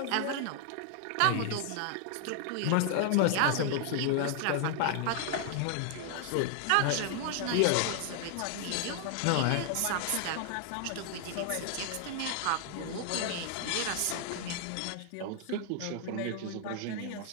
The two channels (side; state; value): both; different; correlation 0.00